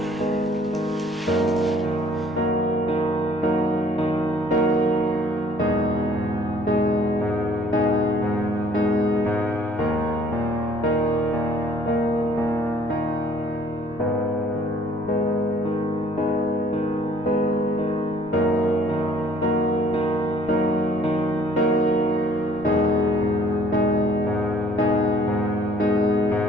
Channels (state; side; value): noise; right; rumble, 26 dB below the sound